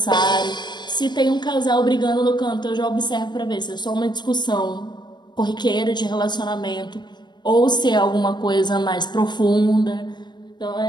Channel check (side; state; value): right; late; 0.21 ms